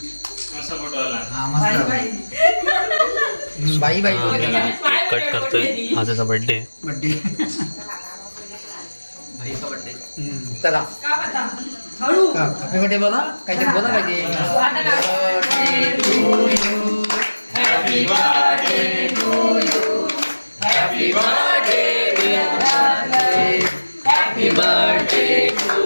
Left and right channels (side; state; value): both; inverted; correlation -1.00